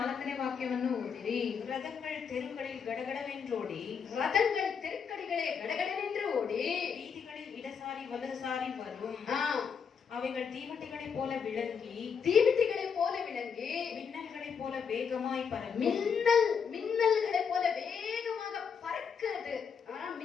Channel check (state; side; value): quieter; right; 6.5 dB